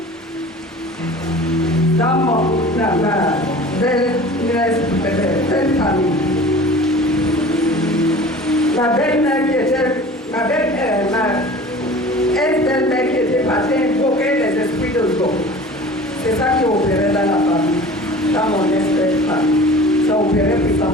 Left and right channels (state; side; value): normal; both; correlation 0.42